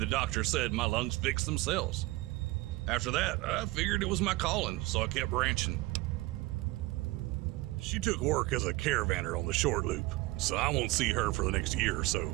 doctor said my lungs fixed themselves. After that, I figured it was my calling, so I kept ranching. She took work as a caravaner on the short loop, so I won't see her for the next year or so,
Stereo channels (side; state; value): left; quieter; 20.5 dB